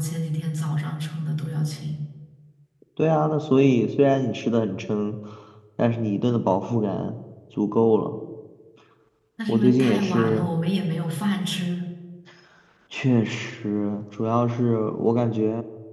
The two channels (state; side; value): identical; both; correlation 1.00